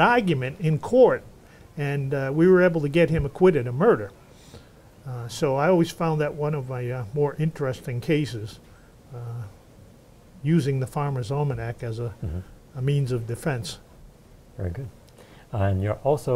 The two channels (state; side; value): identical; both; correlation 1.00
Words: argument in court, and we were able to get him acquitted of murder. So I always found that one of my more interesting cases, using the Farmer's Almanac as a means of defense. Very good. And you're